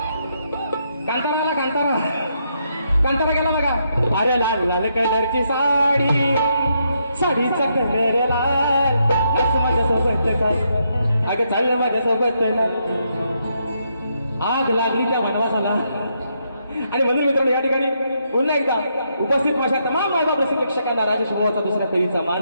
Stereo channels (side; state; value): both; inverted; correlation -0.78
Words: Kantara आला, कांतारा कांतारा गेला बघा. अरे लाल लाल कलरची साडी, साडीचा कलर लाल, आज माझ्यासोबत काय, अगं चाललं माझ्यासोबत ना. आग लागली त्या वनवासाला. आणि म्हणून मित्रांनो या ठिकाणी पुन्हा एकदा उपस्थित माझ्या तमाम मायबाप रसिक प्रेक्षकांना राजेश भाऊचा दुसऱ्या फेरीचा